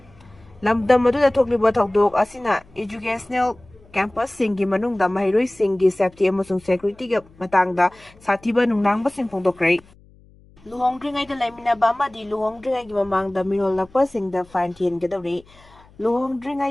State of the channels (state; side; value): noise; left; hum, 27 dB below the sound